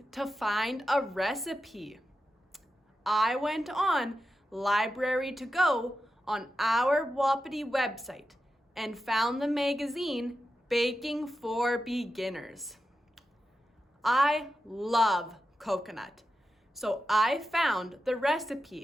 to find a recipe. I went on Library to Go on our Wapiti website and found the magazine Baking for Beginners. I love coconut, so I found the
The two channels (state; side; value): normal; both; correlation 0.90